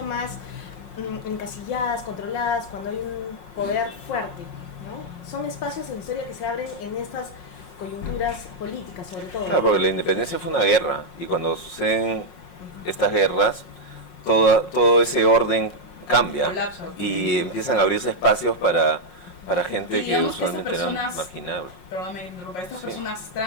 más encasilladas, controladas cuando hay un poder fuerte, ¿no? Son espacios en la historia que se abren en estas coyunturas políticas, sobre todo. Claro, porque la independencia fue una guerra y cuando suceden estas guerras, todo ese orden cambia. Colapso. Y empiezan a abrirse espacios para gente Y que digamos que usualmente estas eran personas- marginables. Perdóname, estas Sí. personas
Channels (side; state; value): right; late; 5.5 ms